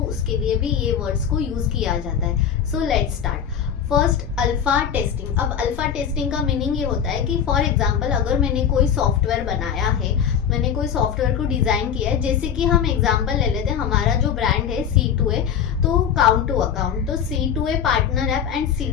उसके लिए भी ये वर्ड्स को यूज किया जाता है। So let's start. First, alpha testing. अब अल्फा टेस्टिंग का मीनिंग ये होता है कि फॉर एग्जांपल अगर मैंने कोई सॉफ्टवेयर बनाया है, मैंने कोई सॉफ्टवेयर को डिजाइन किया है, जैसे कि हम एग्जांपल ले लेते हैं, हमारा जो ब्रांड है C2A, तो काउंट टू अकाउंट, तो C2A partner app and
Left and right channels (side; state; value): right; quieter; 8.2 dB